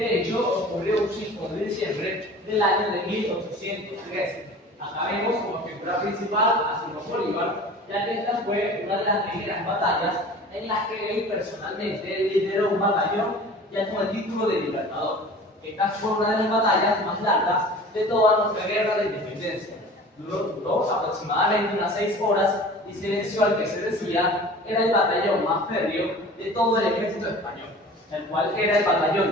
hecho ocurrió un 5 de diciembre del año de 1813. Acá vemos como figura principal a Simón Bolívar, ya que esta fue una de las primeras batallas en las que él personalmente lideró un batallón ya con el título de Libertador. Esta fue una de las batallas más largas de toda nuestra guerra de independencia. Duró aproximadamente unas 6 horas y se venció al que se decía era el batallón más férreo de todo el ejército español, el cual era el batallón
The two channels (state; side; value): normal; both; correlation 0.41